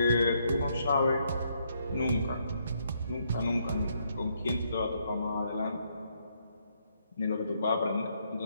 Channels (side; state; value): both; inverted; correlation -0.74